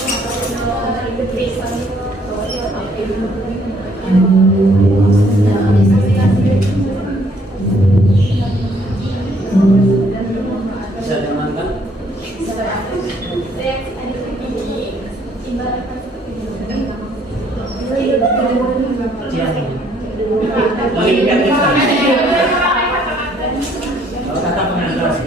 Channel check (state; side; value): normal; both; correlation 0.65